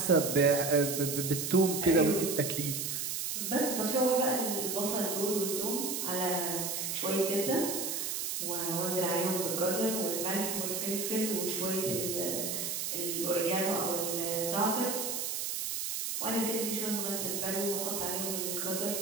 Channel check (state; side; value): noise; right; hiss, 2 dB below the sound